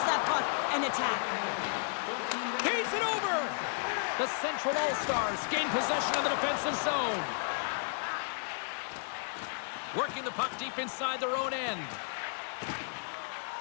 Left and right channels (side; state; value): right; silent; digital silence